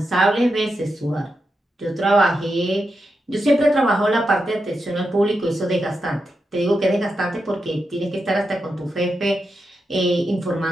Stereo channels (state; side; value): normal; both; correlation 0.87